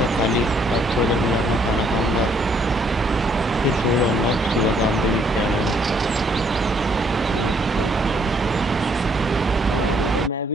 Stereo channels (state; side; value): normal; both; correlation 0.67